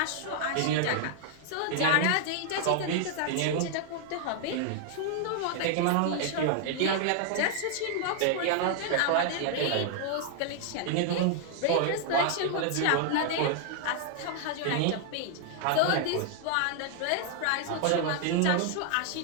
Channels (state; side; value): different; both; correlation 0.00